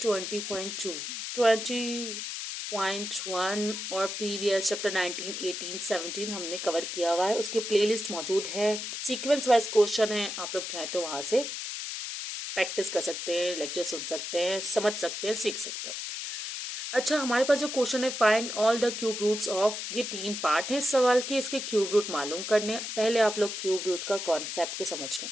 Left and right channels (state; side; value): noise; left; hiss, 5 dB below the sound